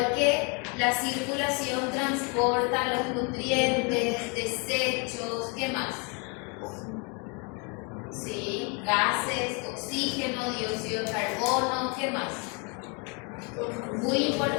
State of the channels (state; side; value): quieter; right; 33.4 dB